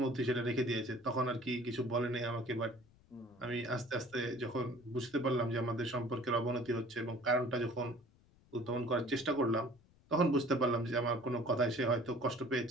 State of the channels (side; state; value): left; noise; rumble, 29 dB below the sound